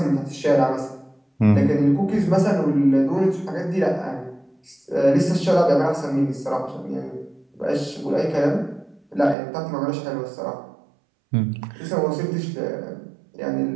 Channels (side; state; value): left; drops out; at 9.3 s